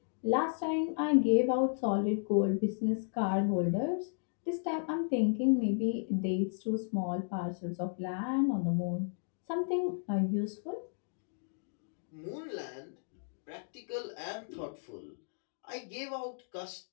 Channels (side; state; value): right; silent; digital silence